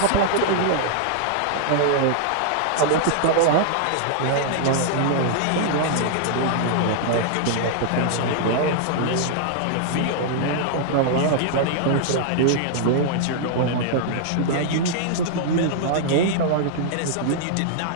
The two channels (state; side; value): different; both; correlation -0.01